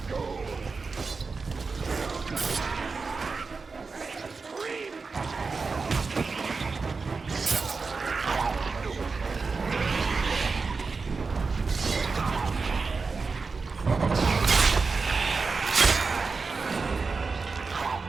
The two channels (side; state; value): left; quieter; 4.5 dB